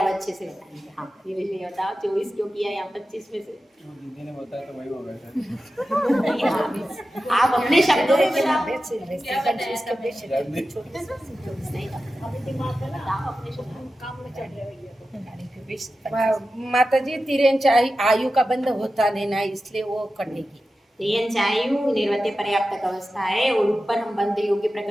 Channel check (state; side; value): normal; both; correlation 0.93